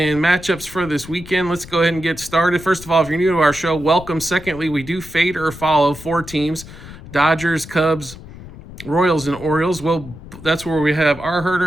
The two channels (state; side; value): noise; left; rumble, 16 dB below the sound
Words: matchups for this weekend. Let's go ahead and get started. First of all, if you're new to our show, welcome. Secondly, we do fade or follow four teams: Dodgers, Cubs, Royals, and Orioles. Well, that's where we have our